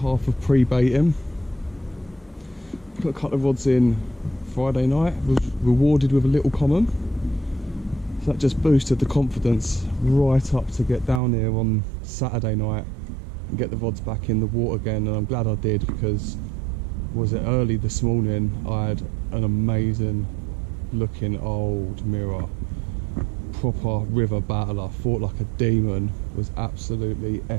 of pre-baiting. Put a couple of rods in Friday night, was rewarded with a little common. So that just boosted the confidence right up to get down here on Saturday night and get the rods back in the water again. And I'm glad I did, because was it early this morning, I had an amazing looking old mirror. Proper river battle. I fought like a demon. It was absolutely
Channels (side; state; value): left; drops out; at 11.2 s